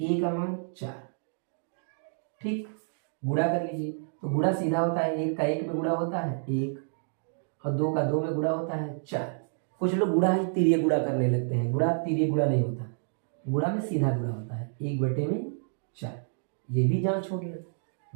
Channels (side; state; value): left; silent; digital silence